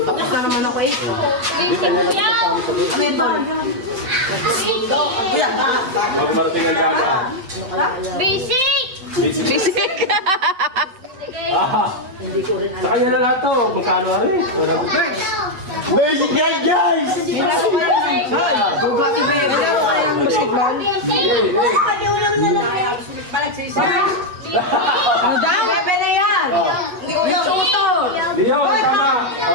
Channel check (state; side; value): late; left; 8.3 ms